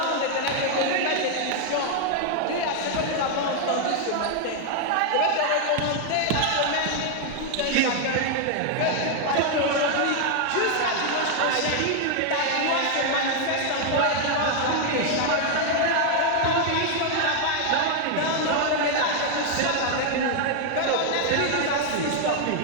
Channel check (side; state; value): both; different; correlation 0.00